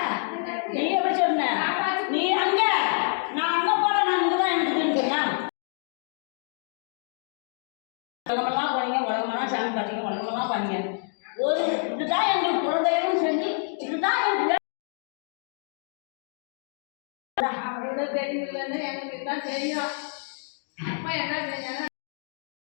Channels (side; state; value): right; silent; 58 dB below the other